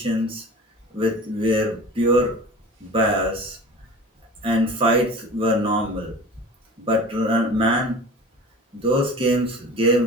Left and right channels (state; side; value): normal; both; correlation 0.38